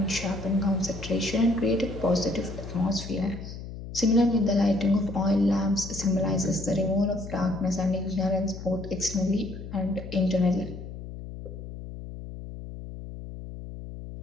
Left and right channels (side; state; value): left; noise; hum, 11 dB below the sound